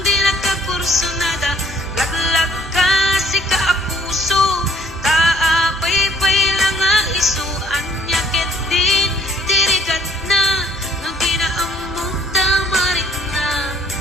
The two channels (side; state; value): both; normal; correlation 0.59